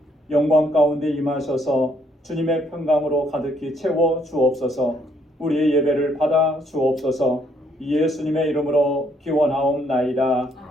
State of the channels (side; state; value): both; normal; correlation 0.69